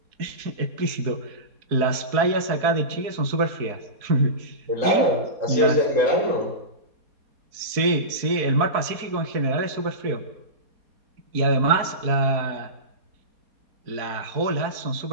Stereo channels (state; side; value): late; left; 4.6 ms